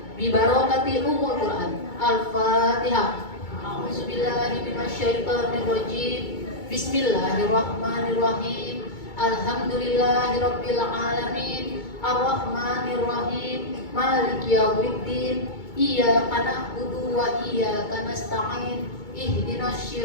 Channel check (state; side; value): late; right; 2.2 ms